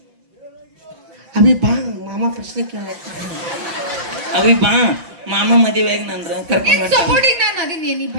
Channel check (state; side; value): late; left; 5.8 ms